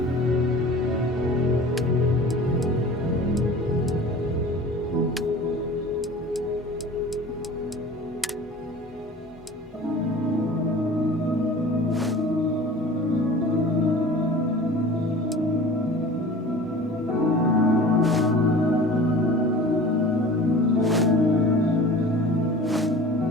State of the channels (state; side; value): normal; both; correlation 0.40